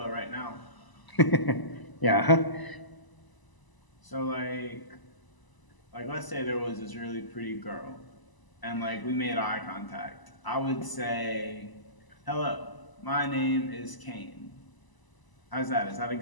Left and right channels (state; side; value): late; right; 1.0 ms